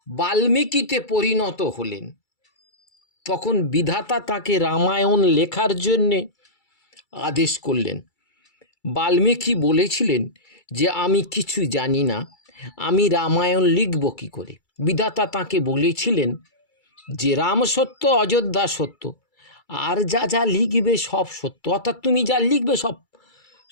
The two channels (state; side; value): late; right; 2.3 ms